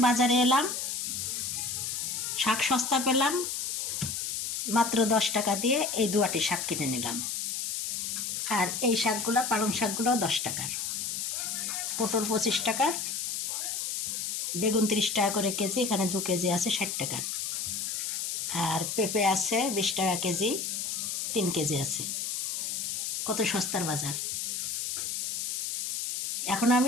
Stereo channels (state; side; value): noise; left; hiss, 2 dB below the sound